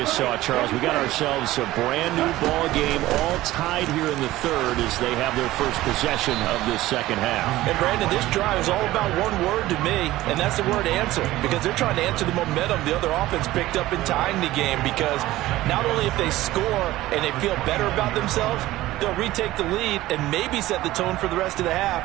saw, Charles, we got ourselves a brand new ball game, all tied here in the third as they have their first possession of this second half. And Brandon, this drive is all about one word to me, and that's the word answer, because they're trying to answer the momentum the other offense picked up in tying the game, because not only if they score and they feel better about themselves, they'll retake the lead and maybe set the tone for the rest of the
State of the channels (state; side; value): quieter; left; 16.5 dB